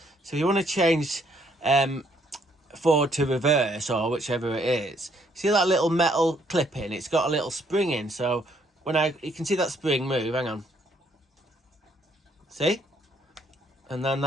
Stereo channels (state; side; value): normal; both; correlation 0.68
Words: So if you want to change forward to reverse or whichever it is, see that little metal clip in? It's got a little spring in. So when you can see that spring move, hang on. See? And then